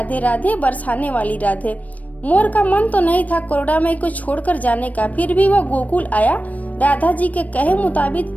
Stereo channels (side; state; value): right; late; 0.072 ms